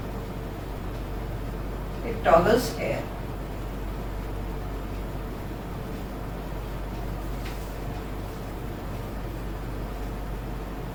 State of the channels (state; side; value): identical; both; correlation 1.00